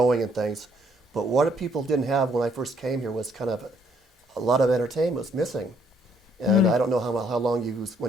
and things. But what people didn't have when I first came here was kind of a lot of entertainment was missing. And I don't know how long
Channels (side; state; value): both; normal; correlation 0.68